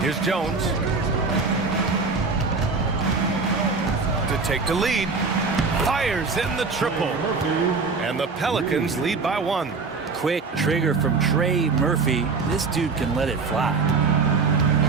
Here's Jones. To take the lead. Fires in the triple. And the Pelicans lead by 1. Quick trigger from Trey Murphy. This dude can let it fly.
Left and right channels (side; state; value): left; quieter; 4.5 dB